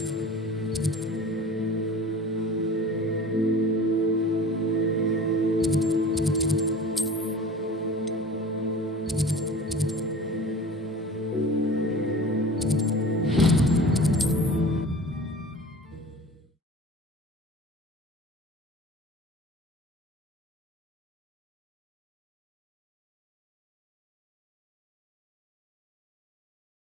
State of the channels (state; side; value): normal; both; correlation 0.40